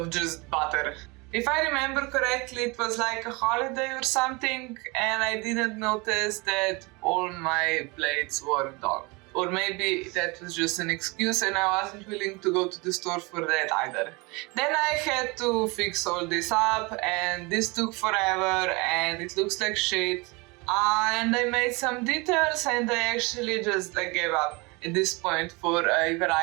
just butter. If I remember correctly, it was like a holiday or something, and I didn't notice that all my blades were dull. Or maybe that was just an excuse and I wasn't willing to go to the store for that either. Then I had to fix all this up, and this took forever and it looks like shit. And I made some details and I actually just gave up at this point for a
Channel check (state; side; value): quieter; left; 26.8 dB